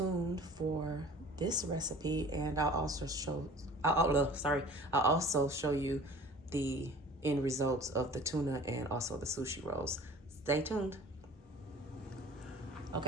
for this recipe, and I'll also show you the end results of the tuna and also the sushi rolls. Stay tuned.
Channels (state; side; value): normal; both; correlation 0.45